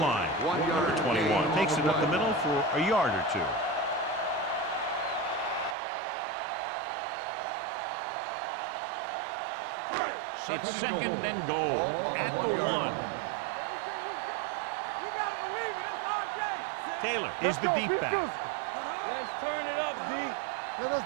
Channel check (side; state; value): left; drops out; at 5.8 s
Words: Number 21 takes it up the middle for a yard or 2. It's second and goal at the 1. Everything you got. You got to believe it. It's RJ. Taylor is the deep back. Let's turn it up, D. Let us